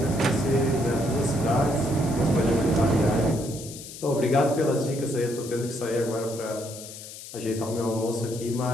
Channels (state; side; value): noise; left; hiss, 13 dB below the sound